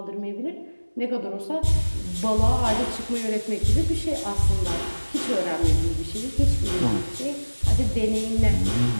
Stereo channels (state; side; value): inverted; both; correlation -1.00